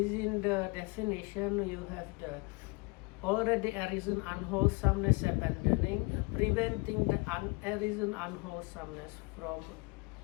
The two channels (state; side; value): quieter; right; 28.4 dB